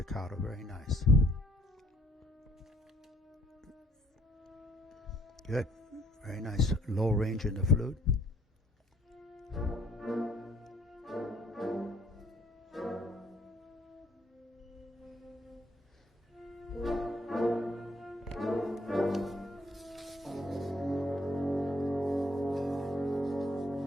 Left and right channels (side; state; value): both; normal; correlation 0.62